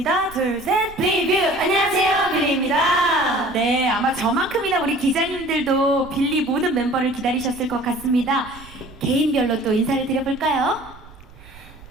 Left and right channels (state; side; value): noise; right; rumble, 20 dB below the sound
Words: 둘, 셋. 리뷰! 안녕하세요, 빌리입니다. 네, 아마 저만큼이나 우리 기자님들도 빌리 모든 멤버를 기다리셨을 것 같습니다. 개인별로 또 인사를 드려볼까요?